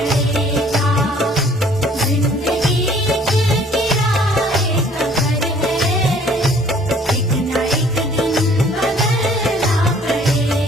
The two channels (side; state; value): both; normal; correlation 0.56